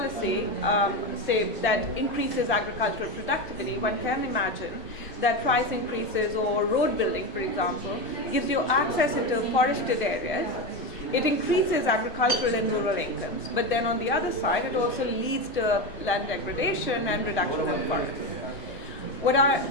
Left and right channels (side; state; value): both; normal; correlation 0.17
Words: say that increases agricultural productivity, one can imagine that price increases, or road building, for example, gives you access into forested areas. It increases agricultural and rural incomes, but then on the other side it also leads to land degradation and reduction of forests. What I